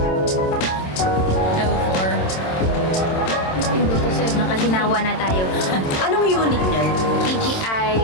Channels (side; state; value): right; late; 27 ms